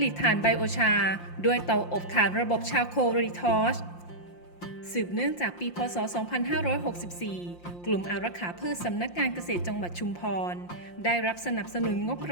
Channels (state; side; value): late; right; 5.7 ms